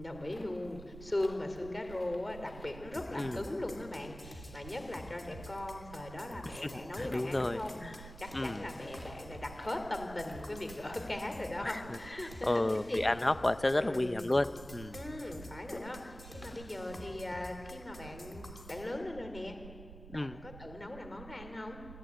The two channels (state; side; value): noise; right; rumble, 13 dB below the sound